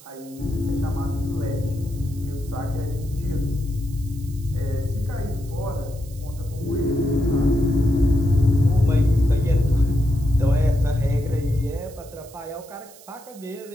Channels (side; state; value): right; noise; hiss, 22 dB below the sound